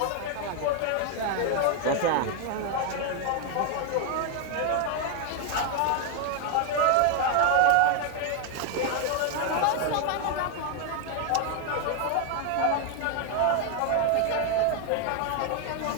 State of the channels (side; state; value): both; different; correlation 0.01